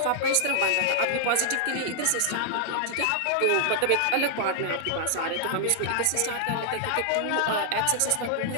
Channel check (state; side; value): different; both; correlation -0.01